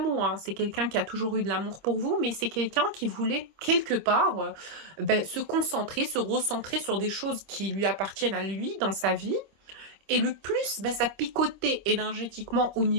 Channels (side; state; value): left; late; 25 ms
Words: hein. C'est quelqu'un qui a toujours eu de l'amour pour vous, mais c'est quelqu'un qui voulait quelque part se concentrer, se recentrer sur des choses qui lui appartiennent à lui dans sa vie, Et le plus, bah, ça picotait énergétiquement au